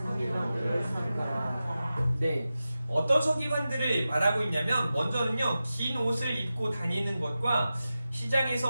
삼가라. 네, 어떤 서기관들을 말하고 있냐면 먼저는요, 긴 옷을 입고 다니는 것과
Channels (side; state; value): both; inverted; correlation -0.93